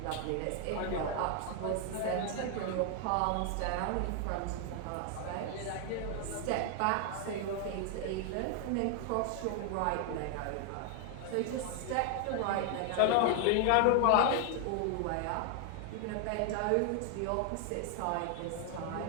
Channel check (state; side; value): different; both; correlation 0.00